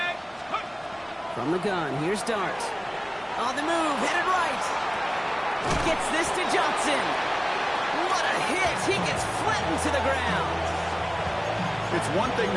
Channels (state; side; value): identical; both; correlation 1.00